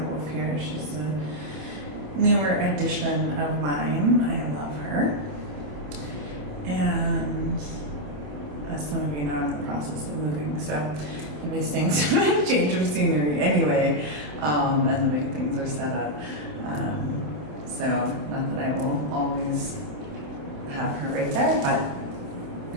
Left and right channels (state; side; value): late; left; 27 ms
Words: Wolf here. She's a newer addition of mine. I love her. And as some of you know, I'm in the process of moving, so I'll be seeing some change of scenery anyway, and the way things are set up. So not that I will always have her right there,